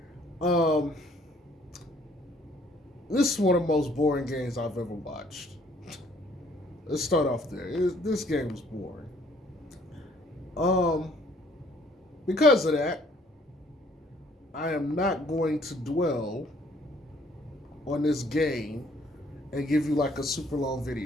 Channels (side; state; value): both; normal; correlation 0.61